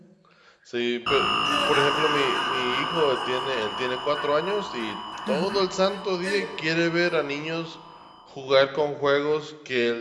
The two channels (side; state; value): both; identical; correlation 1.00